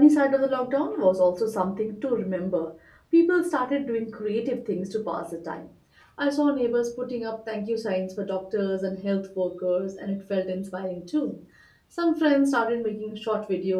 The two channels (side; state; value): both; identical; correlation 1.00